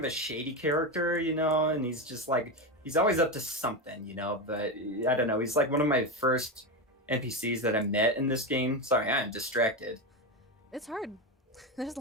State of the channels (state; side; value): normal; both; correlation 0.15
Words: a shady character, you know, and he's just like he's always up to something, you know. But I don't know. He's like one of my first NPCs that I met in this game. Sorry, I'm distracted. It's hard. There's a